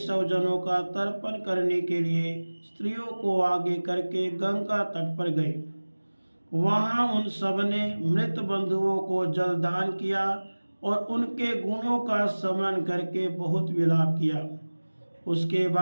का तर्पण करने के लिए स्त्रियों को आगे करके गंगा तट पर गए। वहां उन सब ने मृत बंधुओं को जलदान किया और उनके गुणों का स्मरण करके बहुत विलाप किया। उसके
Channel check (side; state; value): both; inverted; correlation -1.00